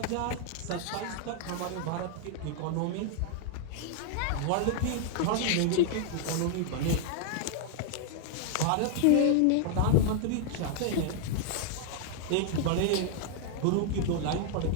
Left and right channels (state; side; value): different; both; correlation 0.00